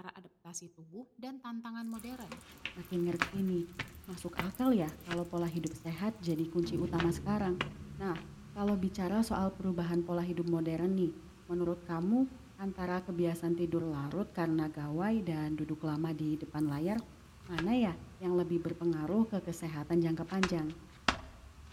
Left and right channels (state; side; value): identical; both; correlation 1.00